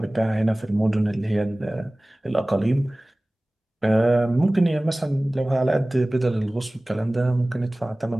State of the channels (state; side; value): normal; both; correlation 0.98